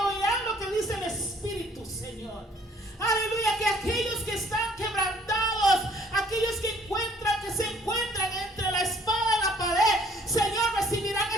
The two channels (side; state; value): both; normal; correlation 0.59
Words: lo que dice el Espíritu, Señor. Aleluya, que aquellos que están quebrantados, aquellos que se encuentran entre la espada y la pared, Señor, recibirán